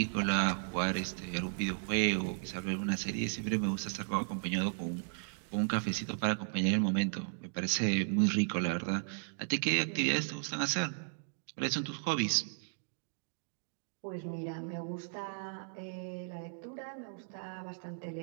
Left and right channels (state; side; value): silent; left; digital silence